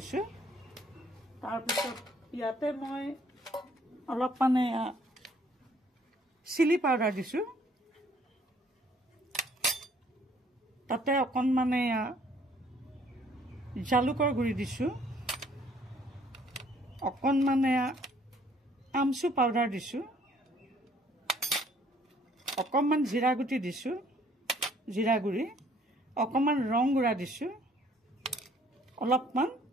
তাৰপিছত ইয়াতে মই অলপ মানে চিলি পাউডাৰ দিছো। তাতে অকণমান জালুকৰ গুড়ি দিছো। অকণমান আমচু পাউডাৰ দিছো। অকণমান জিৰা গুটি দিছো, জিৰা গুড়ি। অকণমান ৰং গুড়া দিছো। অলপমান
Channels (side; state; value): both; normal; correlation 0.61